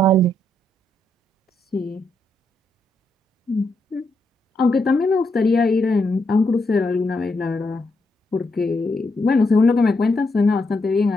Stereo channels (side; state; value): both; normal; correlation 0.80